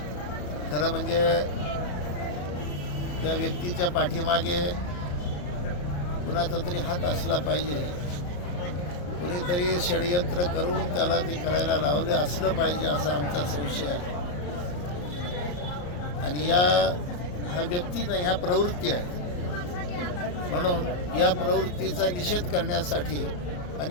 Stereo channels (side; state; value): right; late; 34 ms